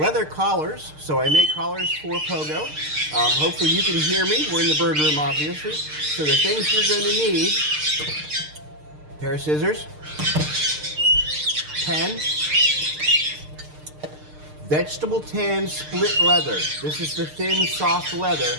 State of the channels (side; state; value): left; late; 6.6 ms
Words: collars. So I make collars for Pogo. Hopefully you can hear me. We're in the bird room, obviously. So the things you're going to need: a pair of scissors, pen, vegetable tan split leather. This is the thin, soft leather.